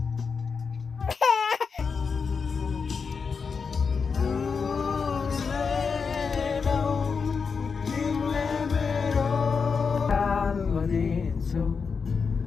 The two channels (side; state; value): right; quieter; 5.5 dB